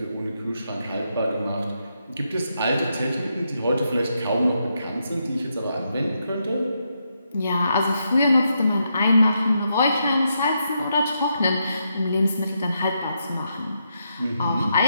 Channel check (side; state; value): both; inverted; correlation -0.82